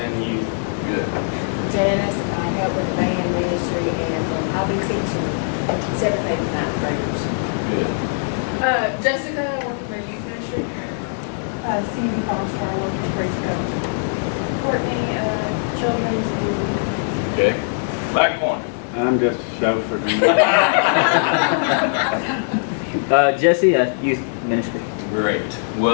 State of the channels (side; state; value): right; silent; digital silence